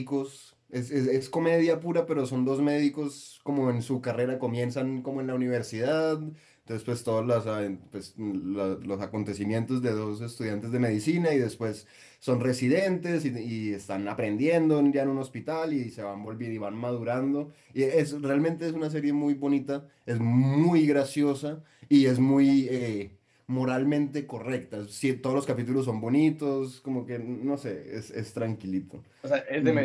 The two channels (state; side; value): identical; both; correlation 1.00